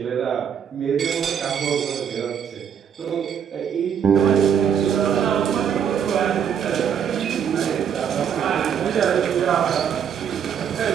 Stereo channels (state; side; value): quieter; left; 8.1 dB